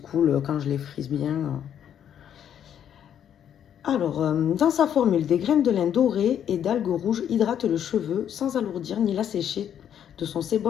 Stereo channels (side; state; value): right; quieter; 9.4 dB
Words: quand je les frise bien. Alors, dans sa formule, des graines de lin dorées et d'algues rouges hydratent le cheveu sans alourdir ni l'assécher de son